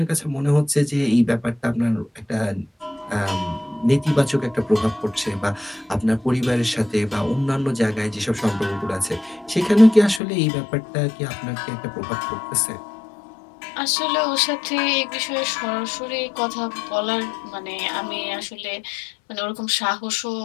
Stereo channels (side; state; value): right; drops out; at 10.2 s